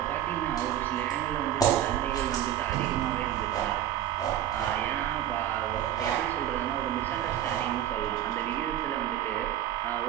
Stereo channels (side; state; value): left; quieter; 11.6 dB